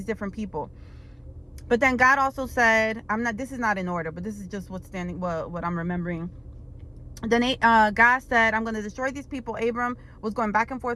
different people. But then God also said, this is not in order, but this is just what I'm remembering. Then God said, I'm going to destroy these people. Abram was going back and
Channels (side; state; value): both; identical; correlation 1.00